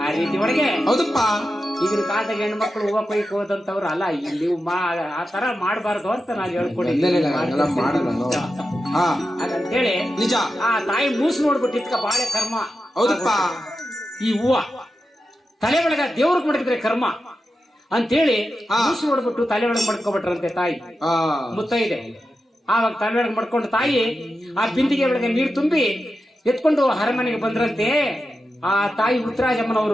ಆ ರೀತಿ ಒಳಗೆ ಹೌದಪ್ಪ. ಈಗಿನ ಕಾಲದಾಗ ಹೆಣ್ಮಕ್ಳು ಹೂವ ಕೊಯ್ಕ್ ಹೋದಂತವ್ರು ಅಲ್ಲ, ಇಲ್ಲಿ ಆ ತರ ಮಾಡಬಾರ್ದು ಅಂತ ನಾನು ಹೇಳ್ಕೊಂಡಿದ್ದೀನಿ. ಹಾಗಂತೇಳಿ ನಿಜ. ಆ ತಾಯಿ ಮೂಸಿ ನೋಡ್ಬಿಟ್ಟು ಇದ್ಕ ಬಾಳೆ ಕರ್ಮ. ಹೌದಪ್ಪ. ಈ ಹೂವ ತಲೆ ಒಳಗ ದೇವ್ರಿಗೆ ಮಡಗಿದ್ರೆ ಕರ್ಮ ಅಂತೇಳಿ ಮೂಸಿ ನೋಡ್ಬಿಟ್ಟು ತಲೆ ಒಳಗೆ ಮಡ್ಕೊಬಿಟ್ರಂತೆ ತಾಯಿ ಮುತ್ತೈದೆ. ಆವಾಗ ತಲೆ ಒಳಗೆ ಮಡ್ಕೊಂಡು ತಾಯಿ ಆ ಬಿಂದಿಗೆ ಒಳಗೆ ನೀರು ತುಂಬಿ ಎತ್ಕೊಂಡು ಅರಮನೆಗೆ ಬಂದ್ರಂತೆ. ಆ ತಾಯಿ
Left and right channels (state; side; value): normal; both; correlation 0.90